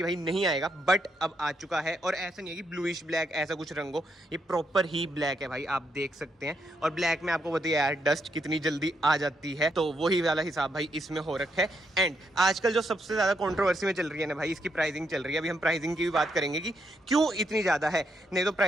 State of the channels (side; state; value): both; normal; correlation 0.78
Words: भाई नहीं आएगा, बट अब आ चुका है। और ऐसा नहीं है कि ब्लूइश ब्लैक ऐसा कुछ रंग हो, ये प्रॉपर ही ब्लैक है भाई, आप देख सकते हैं। और ब्लैक में आपको बताइए यार डस्ट कितनी जल्दी आ जाती है, तो वही वाला हिसाब भाई इसमें हो रखा है। एंड आजकल जो सबसे ज्यादा कॉन्ट्रोवर्सी में चल रही है ना भाई, इसकी प्राइसिंग चल रही है। अभी हम प्राइसिंग की भी बात करेंगे कि क्यों इतनी ज्यादा है। नहीं तो